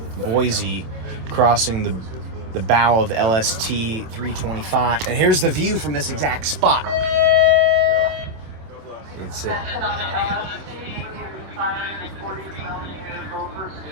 Boise crossing the bow of LST-325. And here's the view from this exact spot. It's it.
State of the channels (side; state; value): left; late; 26 ms